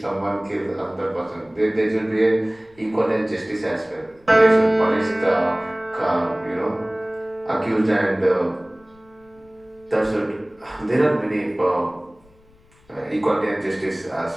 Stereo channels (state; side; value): noise; left; rumble, 30 dB below the sound